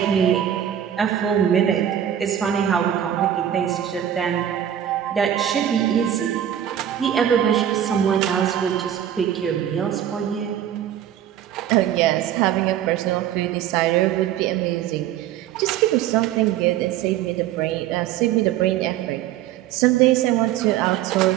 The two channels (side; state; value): left; quieter; 10.6 dB